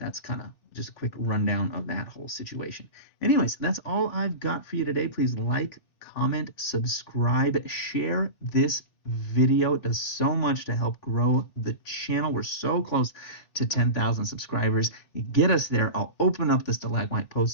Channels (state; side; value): late; right; 3.4 ms